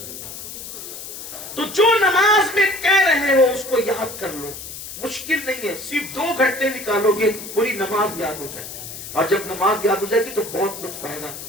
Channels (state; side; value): noise; left; hiss, 11 dB below the sound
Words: تو جو نماز میں کہہ رہے ہو اس کو یاد کر لو, مشکل نہیں ہے. صرف 2 گھنٹے نکالو گے پوری نماز یاد ہو جائے گی. اور جب نماز یاد ہو جائے گی تو بہت لطف آئے گا.